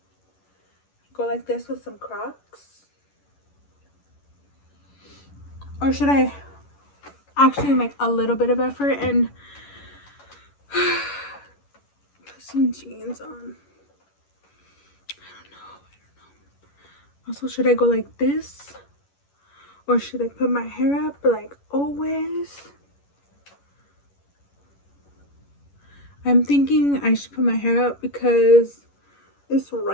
Go like this with some Crocs. Or should I actually make a little bit of effort and put some jeans on? I don't know. Also, should I go like this? Or should I put my hair up like always? I'm thinking I should put my hair up because it's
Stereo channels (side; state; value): right; late; 11 ms